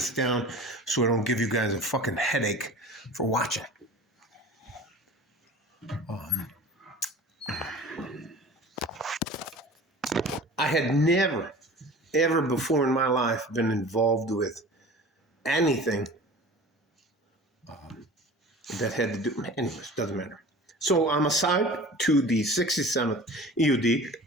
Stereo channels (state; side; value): normal; both; correlation 0.40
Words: down so I don't give you guys a fucking headache for watching. I had never, ever before in my life been involved with anything that had to do, anyways, doesn't matter. So I'm assigned to the 67th EOD